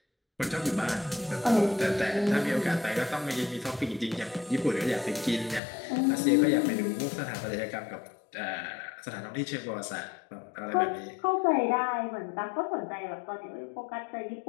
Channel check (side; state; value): right; drops out; at 5.6 s